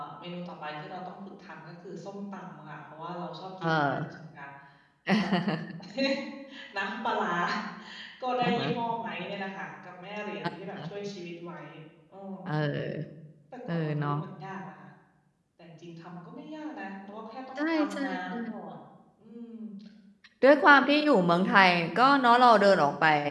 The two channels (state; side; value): identical; both; correlation 1.00